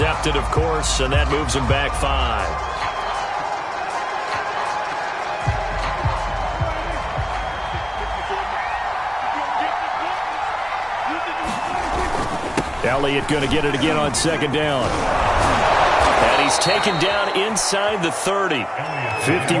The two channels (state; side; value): identical; both; correlation 1.00